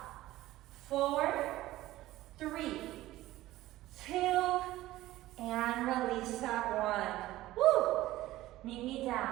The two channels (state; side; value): quieter; left; 16.2 dB